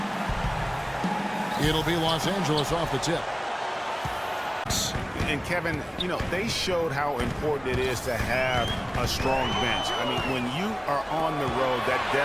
It'll be Los Angeles off the tip. And Kevin, you know, they showed how important it is to have a strong bench. I mean, when you are on the road, that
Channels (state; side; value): identical; both; correlation 1.00